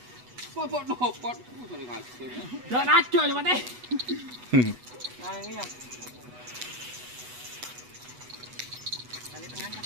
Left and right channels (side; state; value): left; late; 8.1 ms